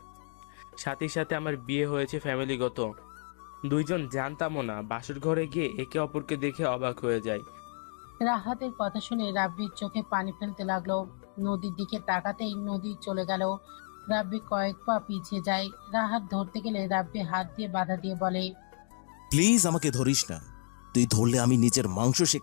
সাথে সাথে আমার বিয়ে হয়েছে ফ্যামিলিগত। দুইজন জানতামও না, বাসর ঘরে গিয়ে একে অপরকে দেখে অবাক হয়ে যায়। রাহাতের কথা শুনে রাব্বির চোখে পানি ফেলতে লাগলো। নদীর দিকে তাকাতেই নদী চলে গেল। রাব্বি কয়েক পা পিছিয়ে যায়। রাহাত ধরতে গেলে রাব্বি হাত দিয়ে বাধা দিয়ে বলে, প্লিজ আমাকে ধরিস না। তুই ধরলে আমি নিজের মাংস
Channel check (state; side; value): silent; right; 57 dB below the other